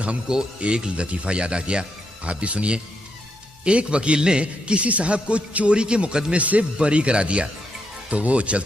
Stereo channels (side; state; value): both; normal; correlation 0.80